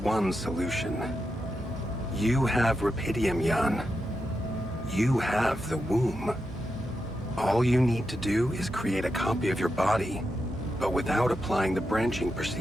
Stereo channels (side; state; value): both; normal; correlation 0.86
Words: solution. You have rapidium, Jan. You have the womb. All you need to do is create a copy of your body, but without applying the branching